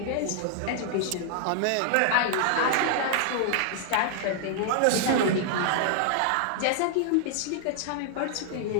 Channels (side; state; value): both; different; correlation -0.01